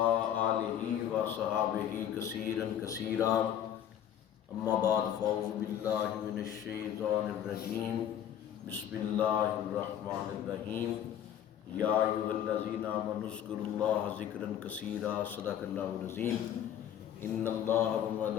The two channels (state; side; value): quieter; right; 10.0 dB